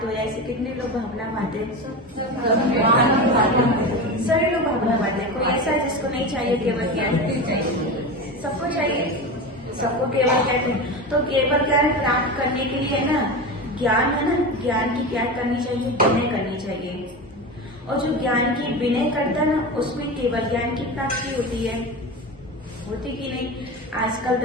हो जाए, ऐसे कितने लोग भावना मानते हैं? सभी लोग भावना मानते हैं। कोई ऐसा है जिसको नहीं चाहिए केवल ज्ञान? सबको चाहिए, सबको केवल कहते हैं। तो केवल ज्ञान प्राप्त करने के लिए ना ज्ञान है ना, ज्ञान की क्या करनी चाहिए? विनय करनी चाहिए। और जो ज्ञान की विनय करता है ना, उसको ही केवल ज्ञान की प्राप्ति होती है। होती कि नहीं? आजकल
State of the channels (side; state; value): both; normal; correlation 0.24